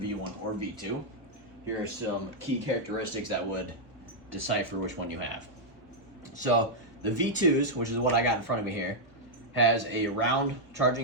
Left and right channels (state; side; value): normal; both; correlation -0.03